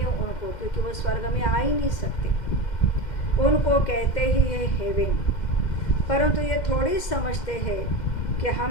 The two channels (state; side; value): late; right; 2.1 ms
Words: उनको, क्योंकि वो स्वर्ग में आ ही नहीं सकते। उनको कहते ही है हेवन, परंतु ये थोड़ी समझते हैं कि